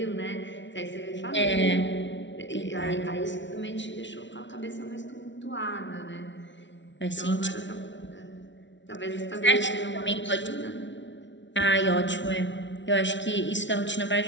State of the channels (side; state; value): right; late; 0.54 ms